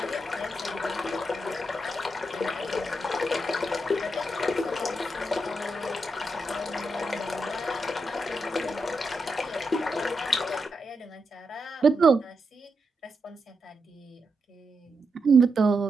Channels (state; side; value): normal; both; correlation 0.84